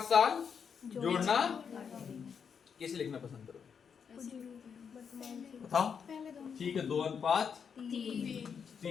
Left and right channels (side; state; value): right; quieter; 6.8 dB